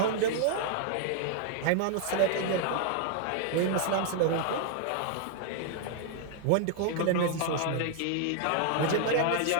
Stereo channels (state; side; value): different; both; correlation 0.00